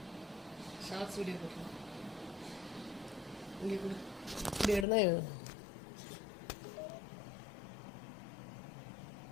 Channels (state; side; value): drops out; right; at 4.9 s